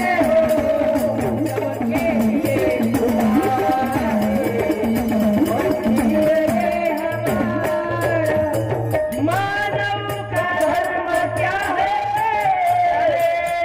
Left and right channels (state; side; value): identical; both; correlation 1.00